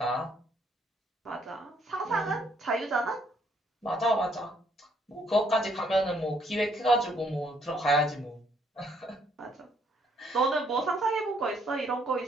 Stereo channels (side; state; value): both; normal; correlation 0.68